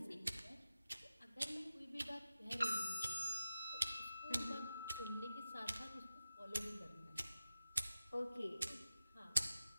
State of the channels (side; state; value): both; inverted; correlation -0.93